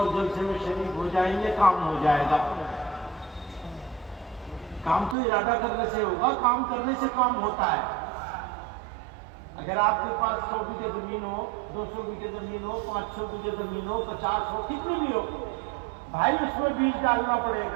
جلسے میں شریک ہو جائیں گے، کام ہو جائے گا۔ کام تو ارادہ کرنے سے ہوگا، کام کرنے سے کام ہوتا ہے۔ اگر آپ کے پاس 100 بیگھے زمین ہو، 200 بیگھے زمین ہو، 500 بیگھے زمین ہو، 50 ہو، کتنی بھی ہو، بھائی اس میں بیج ڈالنا پڑے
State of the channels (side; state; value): left; drops out; at 5.2 s